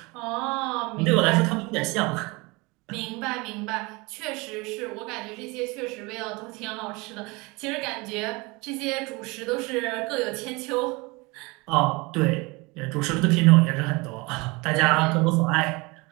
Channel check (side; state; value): left; quieter; 25.6 dB